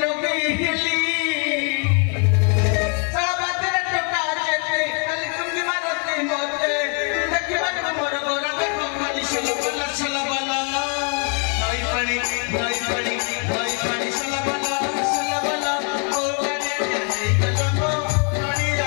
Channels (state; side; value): quieter; right; 38.3 dB